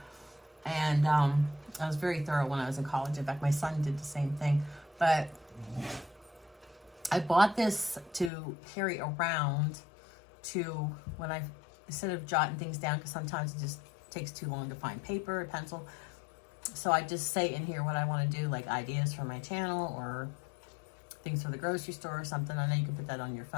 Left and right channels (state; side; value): drops out; right; at 8.3 s